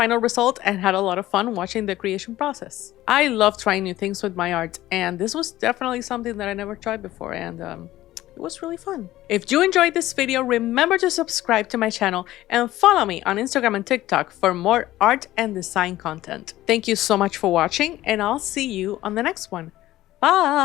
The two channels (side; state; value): right; quieter; 15.4 dB